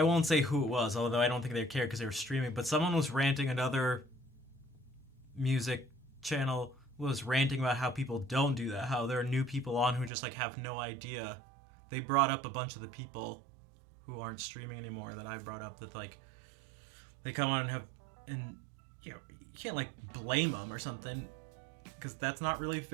won't say who it was, although I don't think they cared because they were streaming, but someone was ranting, another music channel was ranting about how people don't do that, how there are new people on who just like have no idea. They brought up a bunch of the people who aren't streaming anymore that I brought up, that like they come on and have, and you know, you can't like blame them or something, because that's not really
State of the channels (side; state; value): left; drops out; at 10.1 s